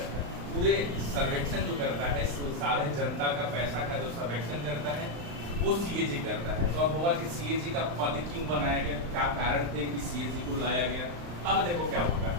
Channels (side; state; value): left; late; 35 ms